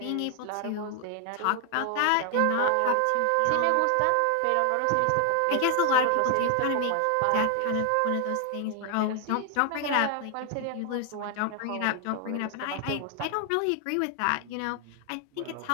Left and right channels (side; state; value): both; different; correlation 0.00